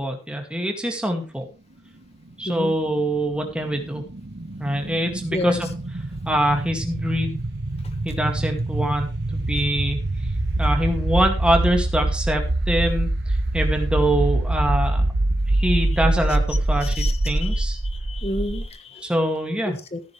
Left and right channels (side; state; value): both; normal; correlation 0.87